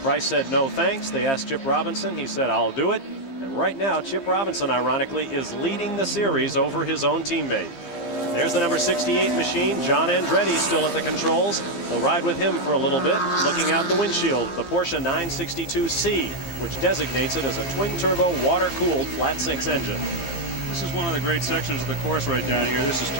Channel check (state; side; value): late; right; 12 ms